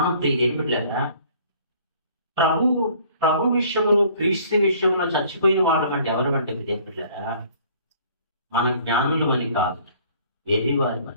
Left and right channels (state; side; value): inverted; both; correlation -0.55